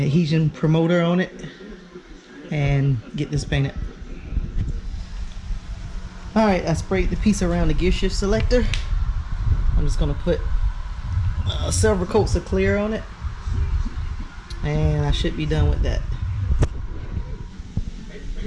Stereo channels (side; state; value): both; identical; correlation 1.00